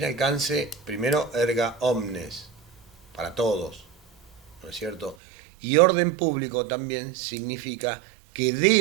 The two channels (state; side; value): drops out; left; at 5.2 s